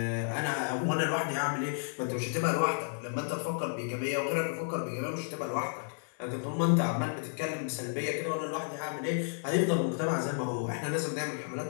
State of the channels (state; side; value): silent; right; digital silence